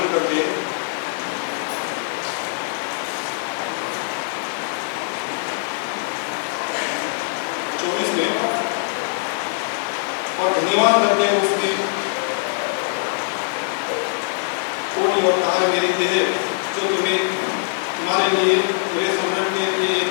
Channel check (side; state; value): right; silent; digital silence